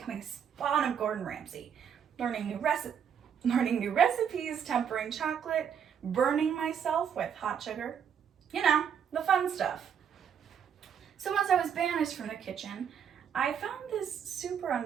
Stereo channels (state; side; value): quieter; left; 8.0 dB